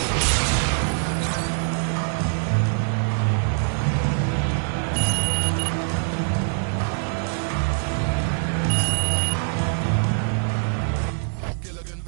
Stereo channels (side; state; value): left; silent; 63 dB below the other